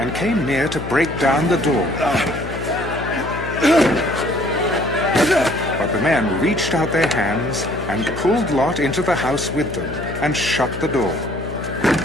came near to break down the door. But the men reached out their hands and pulled Lot into the house with them, and shut the door.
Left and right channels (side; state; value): left; noise; hum, 9 dB below the sound